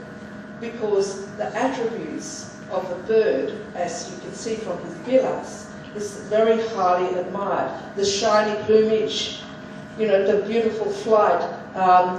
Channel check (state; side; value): identical; both; correlation 1.00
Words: because the attributes of a bird, as you can see from his bilas, is very highly admired. The shiny plumage, you know, the beautiful flight,